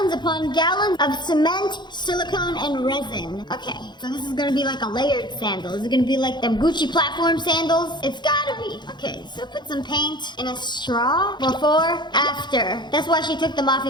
upon gallons of cement, silicone, and resin. Okay, so this is gonna be like a layered sandal. Is it gonna be like them Gucci platform sandals? It's gotta be. Okay, so put some paint in a straw. Before, after. That's why she took them off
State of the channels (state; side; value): late; right; 0.21 ms